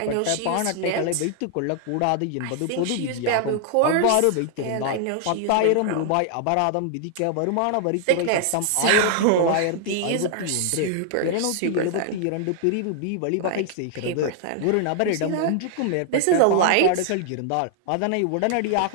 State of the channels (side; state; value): both; different; correlation 0.00